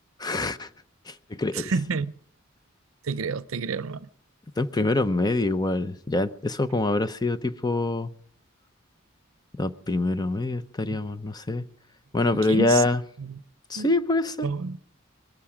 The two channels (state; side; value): normal; both; correlation 0.55